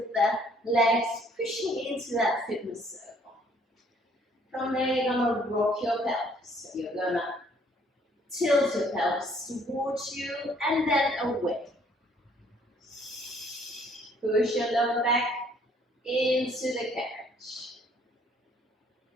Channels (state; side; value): normal; both; correlation 0.62